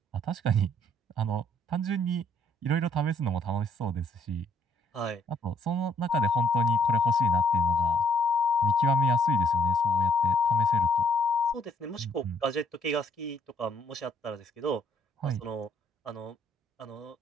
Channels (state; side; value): normal; both; correlation 0.67